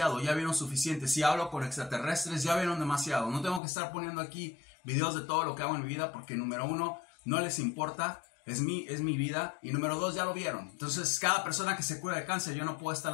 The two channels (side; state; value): right; drops out; at 3.6 s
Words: ya vieron suficiente. Si hablo con extraterrestres, ya vieron demasiado. No tengo que estar poniendo aquí videos de todo lo que hago en mi vida, porque número uno, no les importa, es mi vida. Y número dos, ya lo vieron. Entonces, cada persona que se cura de cáncer, yo no puedo